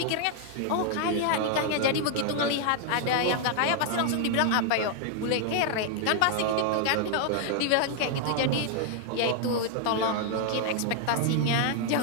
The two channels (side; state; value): both; different; correlation 0.00